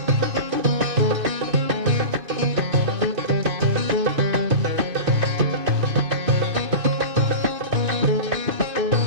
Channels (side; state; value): left; late; 2.5 ms